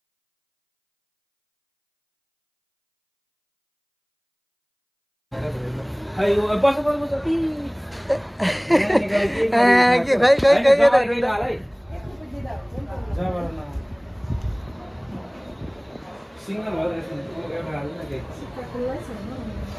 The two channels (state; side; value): identical; both; correlation 1.00